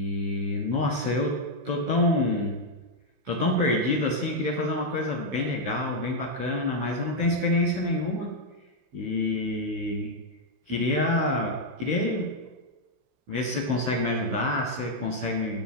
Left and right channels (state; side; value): late; left; 16 ms